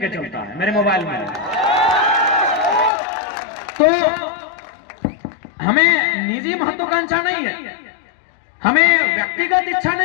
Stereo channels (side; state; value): right; drops out; at 2.9 s